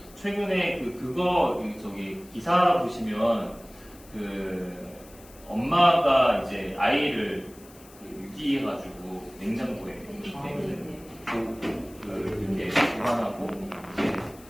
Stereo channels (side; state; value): left; noise; hiss, 23 dB below the sound